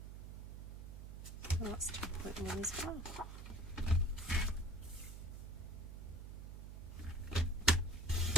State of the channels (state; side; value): noise; right; hum, 9 dB below the sound